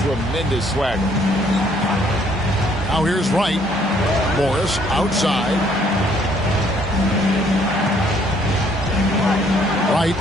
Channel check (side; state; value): both; normal; correlation 0.64